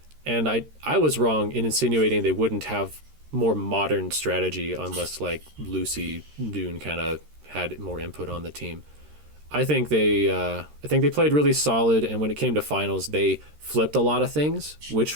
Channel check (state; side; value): late; left; 13 ms